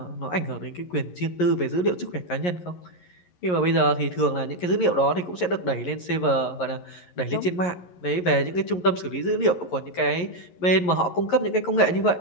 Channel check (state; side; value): late; right; 11 ms